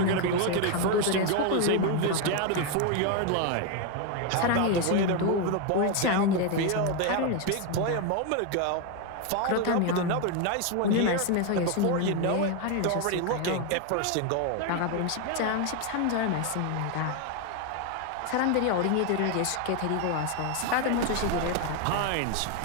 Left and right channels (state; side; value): different; both; correlation 0.01